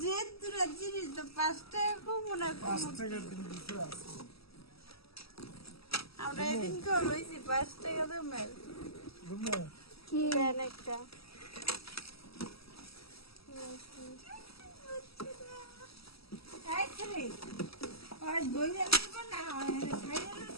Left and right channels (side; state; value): right; late; 0.76 ms